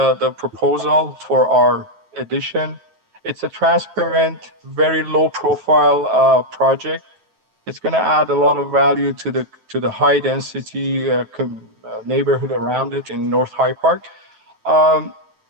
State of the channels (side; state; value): left; late; 9.3 ms